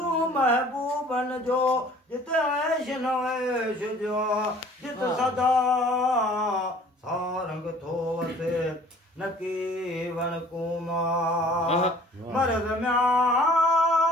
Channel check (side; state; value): both; normal; correlation 0.52